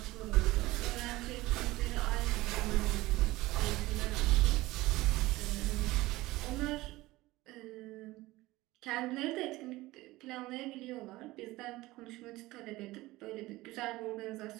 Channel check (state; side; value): quieter; left; 19.0 dB